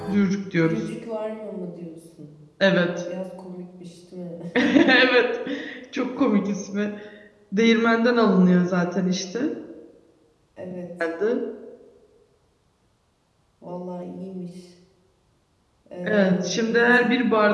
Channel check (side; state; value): both; identical; correlation 1.00